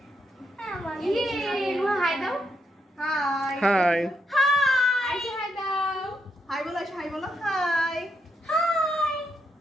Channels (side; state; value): both; normal; correlation 0.80